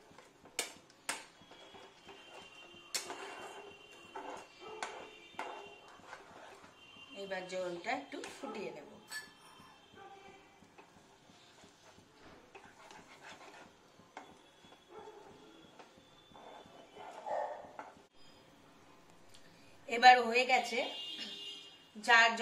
এবার জলটা একটু ফুটিয়ে নেব। এবার হয়ে গেছে।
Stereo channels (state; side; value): identical; both; correlation 1.00